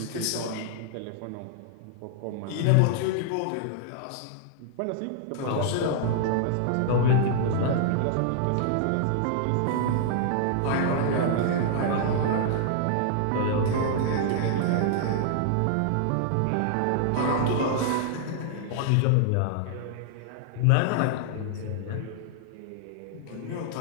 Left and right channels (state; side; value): different; both; correlation -0.01